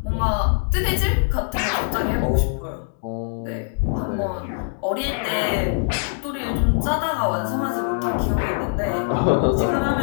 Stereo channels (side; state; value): right; silent; digital silence